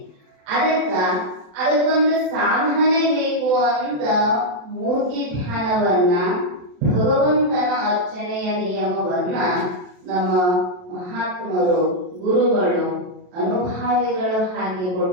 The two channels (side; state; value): left; late; 27 ms